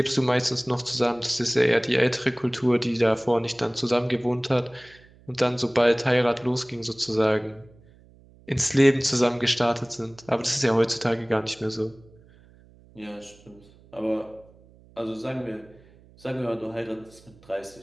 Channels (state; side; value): noise; right; hum, 26 dB below the sound